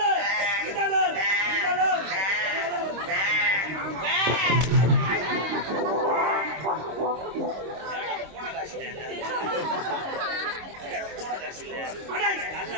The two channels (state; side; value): late; left; 26 ms